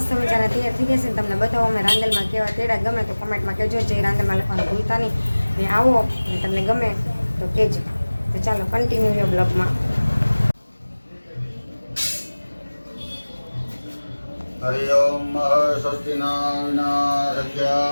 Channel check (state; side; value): inverted; both; correlation -1.00